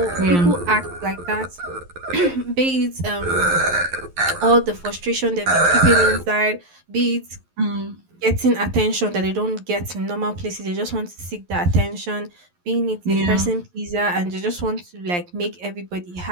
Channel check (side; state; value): left; late; 11 ms